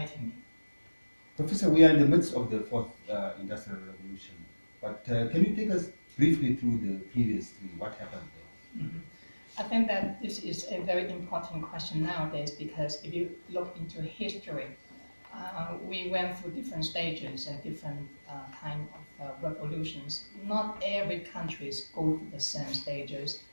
me. Professor, we are in the midst of the fourth industrial revolution, but can you take us briefly through the previous three? What happened there? Mm-hmm. I think that this is a very important question nowadays because if you look into history, we went through different stages and different kind of revolutions. Not every country go through the same stages,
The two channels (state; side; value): inverted; both; correlation -1.00